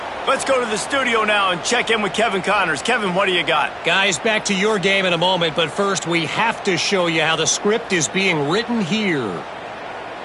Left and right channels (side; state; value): both; identical; correlation 1.00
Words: Let's go to the studio now and check in with Kevin Connors. Kevin, what do you got? Guys, back to your game in a moment, but first we have to show you how the script is being written here.